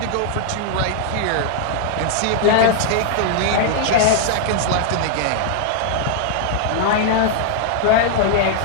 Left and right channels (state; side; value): different; both; correlation 0.00